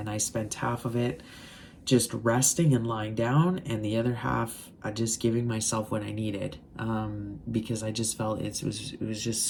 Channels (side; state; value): both; identical; correlation 1.00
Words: I spent half of it just resting and lying down, and the other half just giving myself what I needed, because I just felt it was just